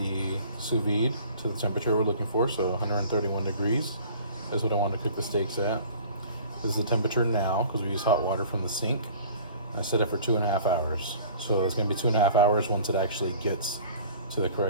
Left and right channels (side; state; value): both; inverted; correlation -0.47